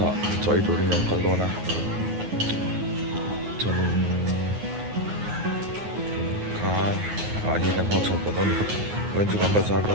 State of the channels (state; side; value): late; left; 9.5 ms